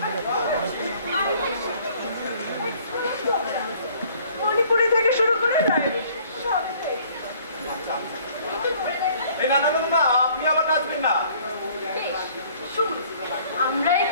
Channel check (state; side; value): inverted; both; correlation -0.57